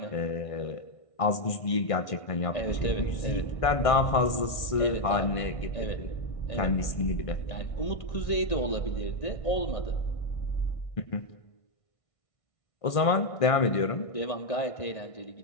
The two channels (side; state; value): right; late; 1.6 ms